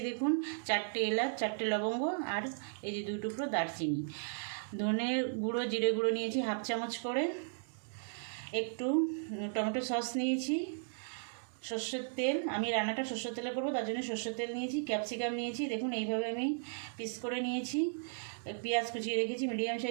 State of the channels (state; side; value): silent; left; digital silence